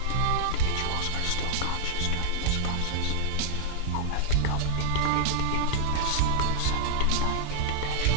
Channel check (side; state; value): both; different; correlation 0.00